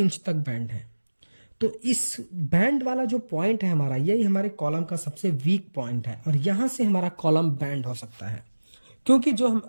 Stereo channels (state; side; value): inverted; both; correlation -1.00